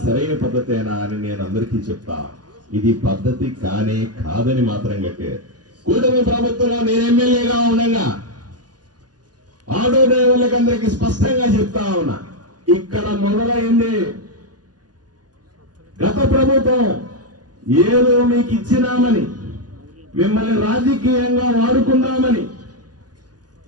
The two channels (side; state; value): left; late; 0.69 ms